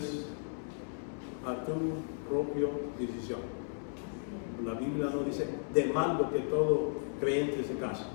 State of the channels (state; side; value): silent; right; digital silence